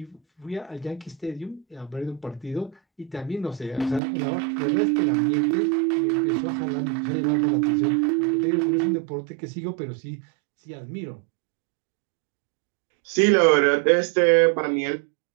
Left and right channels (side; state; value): left; drops out; at 4.0 s